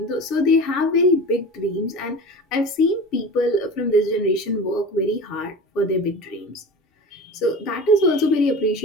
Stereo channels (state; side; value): normal; both; correlation 0.34